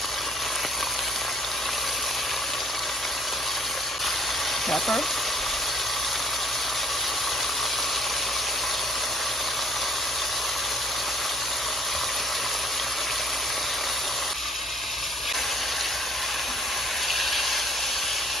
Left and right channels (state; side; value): normal; both; correlation 0.59